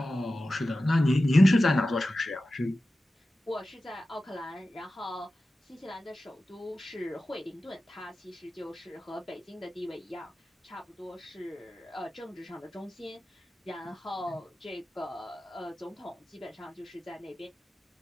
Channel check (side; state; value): both; normal; correlation 0.94